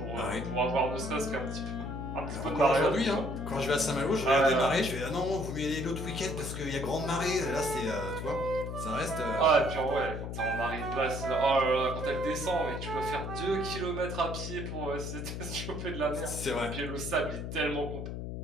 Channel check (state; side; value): noise; left; hum, 6 dB below the sound